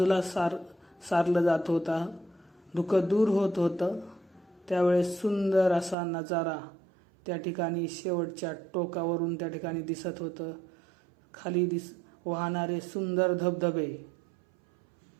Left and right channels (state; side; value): drops out; left; at 6.0 s